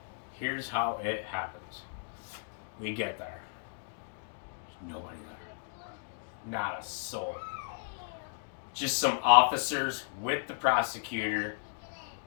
here's how it happens. We get there, there's nobody there, not a soul, just some officers with the prosecutor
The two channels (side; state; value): right; silent; digital silence